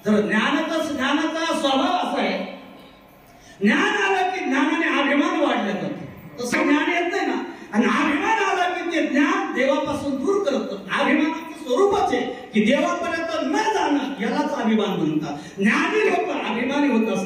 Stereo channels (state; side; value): identical; both; correlation 1.00